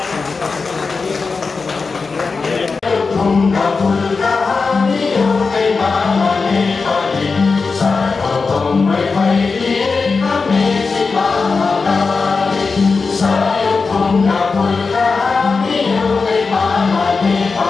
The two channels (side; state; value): right; quieter; 4.5 dB